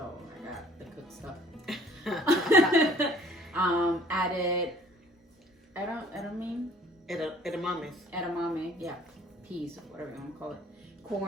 got the cooked stuff. Added edamame, yeah, peas, whatever you want to call it,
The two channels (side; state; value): both; normal; correlation 0.55